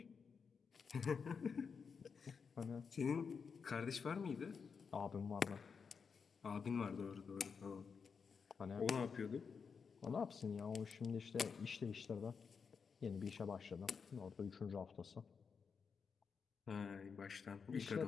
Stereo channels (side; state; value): right; quieter; 5.8 dB